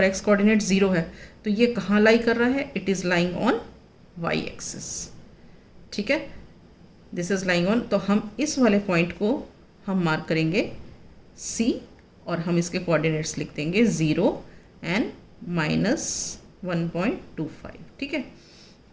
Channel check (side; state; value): both; identical; correlation 1.00